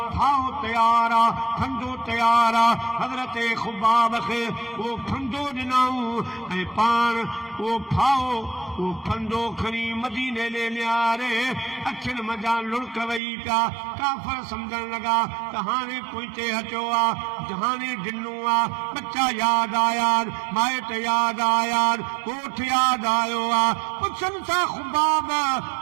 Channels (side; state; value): left; drops out; at 13.2 s